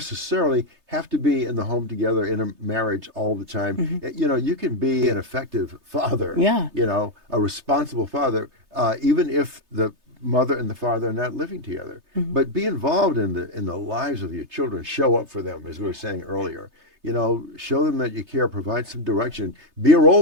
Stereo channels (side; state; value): left; late; 3.3 ms